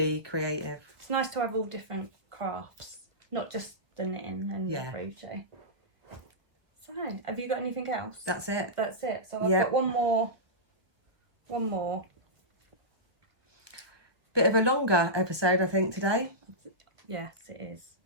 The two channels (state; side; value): late; left; 1.1 ms